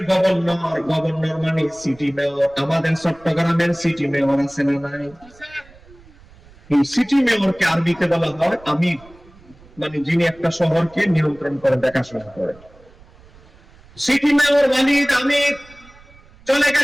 গভর্নর, গভর্নর মানে সিটি মেয়র, আমাদের চট্টগ্রামের সিটি মেয়র আছে না নাই? এই সিটি মেয়রকে আরবিতে বলা হয় আমির, মানে যিনি একটা শহরকে নিয়ন্ত্রণ করে, দেখাশোনা করে। সিটি মেয়র ওয়ালিদ আমির চলে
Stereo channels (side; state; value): right; noise; rumble, 25 dB below the sound